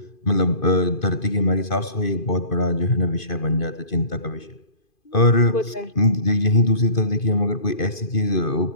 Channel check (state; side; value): late; right; 2.5 ms